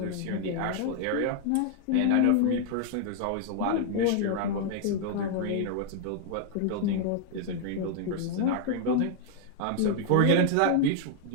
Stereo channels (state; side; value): different; both; correlation 0.00